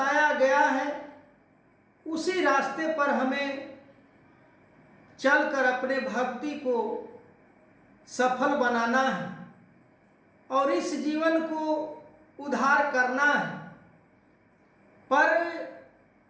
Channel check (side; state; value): both; identical; correlation 1.00